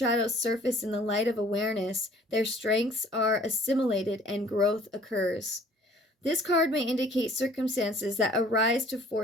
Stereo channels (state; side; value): normal; both; correlation 0.54